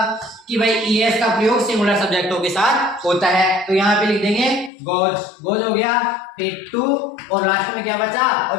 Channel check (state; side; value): drops out; right; at 4.7 s